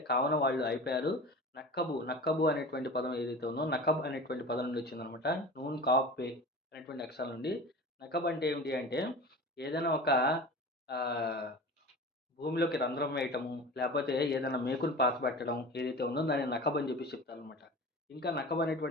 కావున వాళ్ళు అయిపోయారు. నక్కబు అనేటువంటి పదం ఏదైతే ఉందో నకబ్ అనేటువంటి పదం నుండి వచ్చిందనమాట. నూన్, కాఫ్, పే అనేటువంటి అక్షరాల నుండి. నకబ్ అంటే ఏమిటి అంటే ఏదైనా ఒక ఆహ్, భూమిలోకి రంధ్రం వేయటము, లేపోతే ఏదైనా మేకుని పాతిపెట్టడం ఏదైతే ఉందో దాన్ని నకబ్ అని చెప్పేసి చెప్తారనమాట. ఇంకా నకబ్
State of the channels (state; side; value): normal; both; correlation 0.35